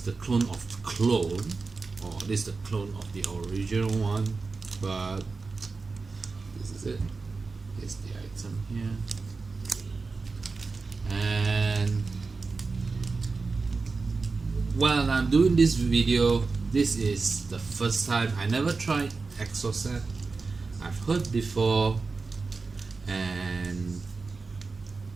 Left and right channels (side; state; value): left; quieter; 4.2 dB